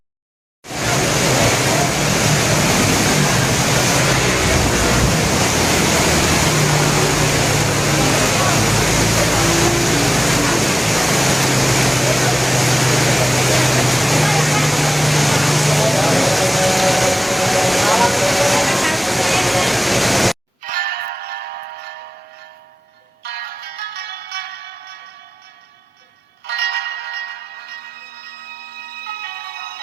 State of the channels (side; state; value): both; normal; correlation 0.98